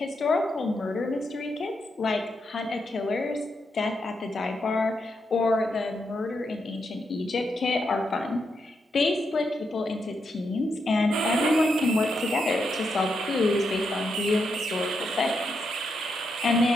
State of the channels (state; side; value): normal; both; correlation 0.82